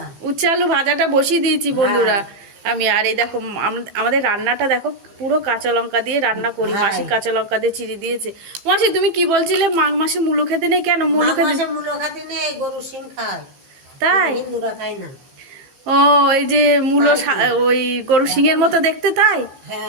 উচ্ছে আলু ভাজাটা বসিয়ে দিয়েছি বন্ধুরা। হ্যাঁ আমি আর এই দেখো আমাদের রান্নাটা দেখো, পুরো কাঁচা লঙ্কা দিয়ে রান্না করি। মাসি হ্যাঁ। কাঁচা লঙ্কা দিয়ে চিড়ে দিয়েছে। মাসি তুমি কি বলছিলে মাঘ মাসে মূলো খেতে নেই? কেন মূলো মাঘ খেতে? মাসে মূলো খাতে নেই, গরু শিং খায়। তাই? হিন্দুরা খায় না। ও, এই যে মূলো তাই তো। ওই গরু শিঙের এখন মতো দেখতে, তাই?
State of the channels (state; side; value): late; left; 15 ms